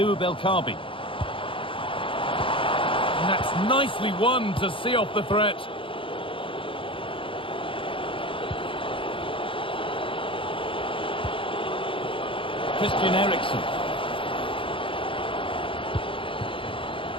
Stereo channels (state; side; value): late; right; 0.25 ms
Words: El Kaabi. And that's nicely won to see off the threat. Christian Eriksen.